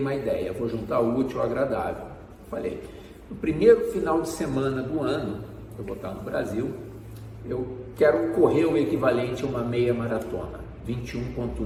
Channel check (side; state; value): both; identical; correlation 1.00